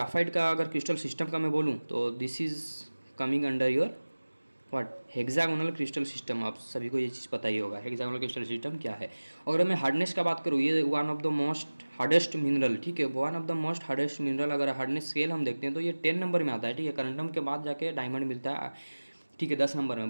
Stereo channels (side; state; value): both; inverted; correlation -1.00